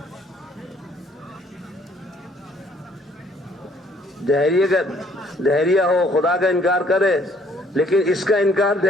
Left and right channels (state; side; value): normal; both; correlation 0.62